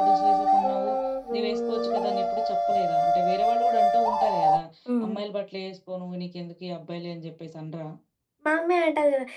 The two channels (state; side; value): identical; both; correlation 1.00